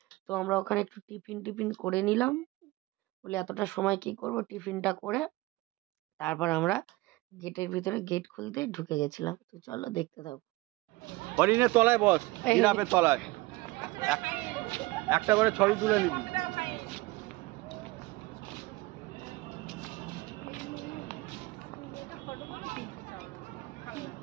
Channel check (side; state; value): left; quieter; 21.1 dB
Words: তো আমরা ওখানে একটু টিফিন করে নিলাম, বলে এতটা সময় কি করব, টিফিনটা করে তারপর আমরা গেটের ভিতরে গেট খুলতে ঢুকে গেছিলাম। তো চলো দেখতে থাকো। হরিণের তলায় বস, জিরাফের তলায় একটা করে ছবি তুলে নিবি।